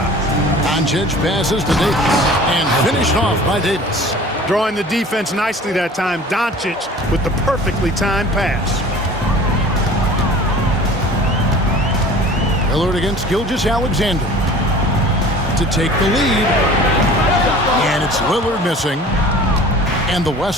Doncic passes to Davis and finished off by Davis. Drawing the defense nicely that time. Doncic with the perfectly timed pass. Lillard against Gilgeous-Alexander to take the lead. And it's Lillard missing. And the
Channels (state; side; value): normal; both; correlation 0.44